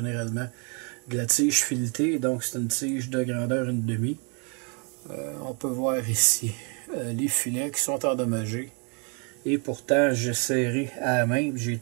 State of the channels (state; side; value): quieter; left; 36.0 dB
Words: de la tige filetée. Donc c'est une tige de grandeur 1,5. On peut voir ici les filets qui sont endommagés. Et pourtant j'ai serré à la main.